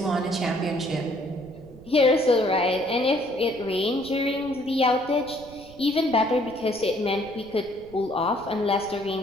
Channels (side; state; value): right; noise; rumble, 21 dB below the sound